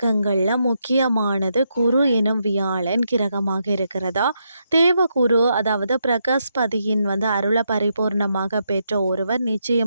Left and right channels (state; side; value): inverted; both; correlation -0.80